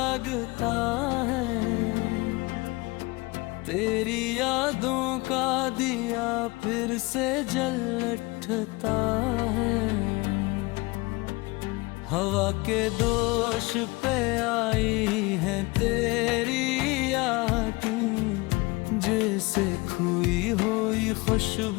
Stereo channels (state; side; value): quieter; right; 24.3 dB